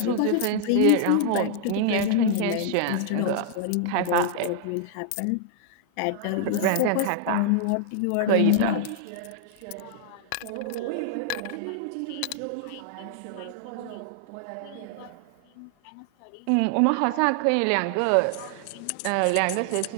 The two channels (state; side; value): different; both; correlation -0.01